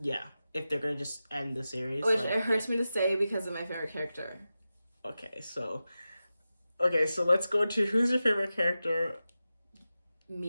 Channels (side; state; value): both; inverted; correlation -0.93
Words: Yeah, if they're going to just end the series. Which it hurts me to say because of my favorite character. Okay, so let's go to who's your favorite character?